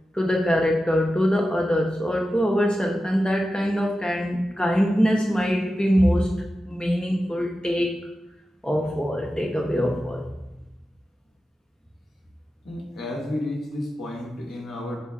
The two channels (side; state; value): both; normal; correlation 0.92